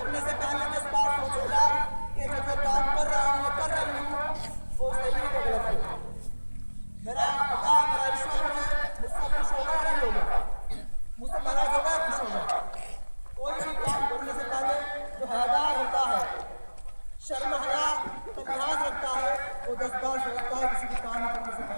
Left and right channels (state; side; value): inverted; both; correlation -1.00